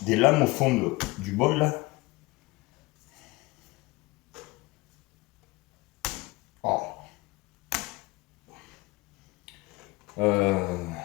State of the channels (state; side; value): quieter; right; 22.5 dB